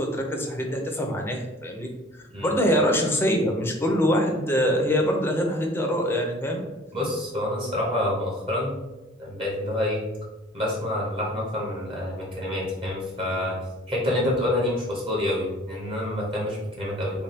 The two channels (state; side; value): normal; both; correlation 0.48